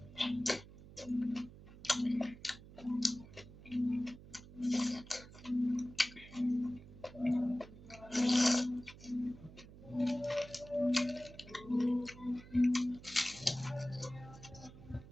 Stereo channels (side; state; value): right; noise; hum, 18 dB below the sound